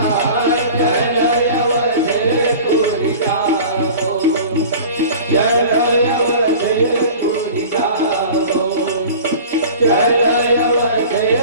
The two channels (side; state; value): both; inverted; correlation -0.40